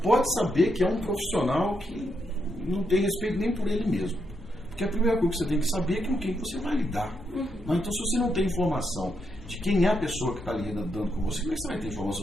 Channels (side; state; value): both; normal; correlation 0.80